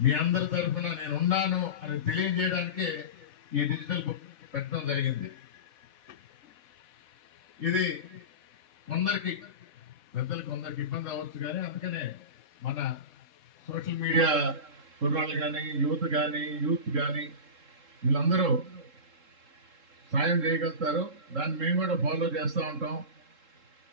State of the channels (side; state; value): left; late; 3.7 ms